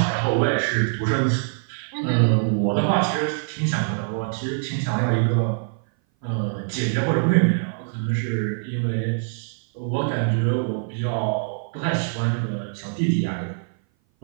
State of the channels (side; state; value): left; silent; 58 dB below the other